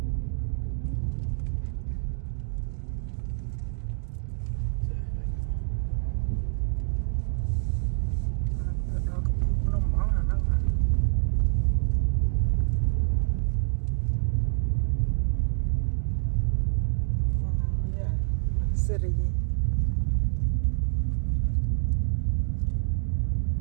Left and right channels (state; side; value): silent; left; digital silence